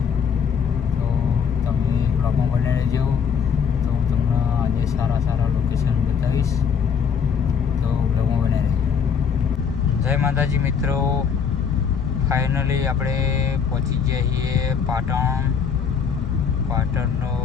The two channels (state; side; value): quieter; right; 6.8 dB